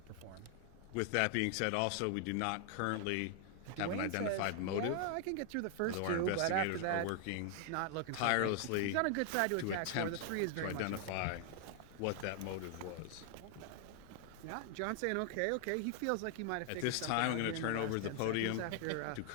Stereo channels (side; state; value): both; different; correlation 0.00